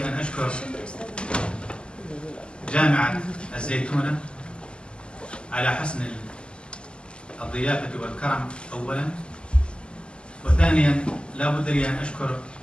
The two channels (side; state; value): right; late; 0.050 ms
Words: أن أشكر جامعة الزيتونة على حسن الضيافة والكرم أولا، وثانيا لا بد لي أن أشكر